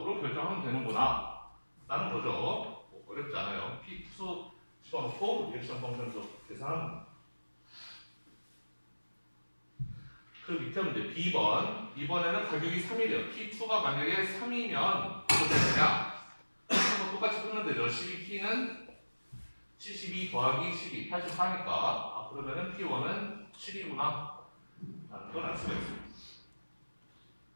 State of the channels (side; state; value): both; inverted; correlation -1.00